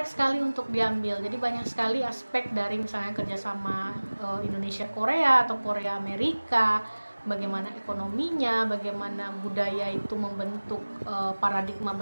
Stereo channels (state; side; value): inverted; both; correlation -1.00